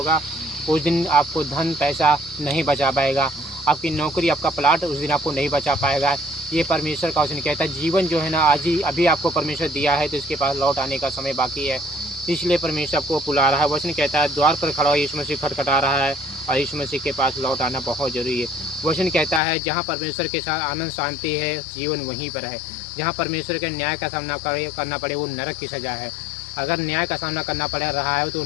उस दिन आपको धन पैसा नहीं बचा पाएगा, आपकी नौकरी आपका प्लाट उस दिन आपको नहीं बचा पाएगा। ये परमेश्वर का वचन कहता है। जीवन जो है ना आज ही अभी आपको परमेश्वर दिया है तो इसके पास लौट आने का समय बाकी है, इसलिए परमेश्वर आपको बुला रहा है। वचन कहता है द्वार पर खड़ा हो यीशु मसीह खटखटा रहा है और यीशु मसीह के पास लौट आना बहुत जरूरी है। वचन कहता है जहाँ परमेश्वर के साथ आनंद शांति है जीवन वहीं पर है। जहाँ परमेश्वर के न्याय का सामना करना पड़े वो नरक की सज़ा है। अगर न्याय का सामना करना पड़ रहा है तो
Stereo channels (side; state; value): right; drops out; at 19.4 s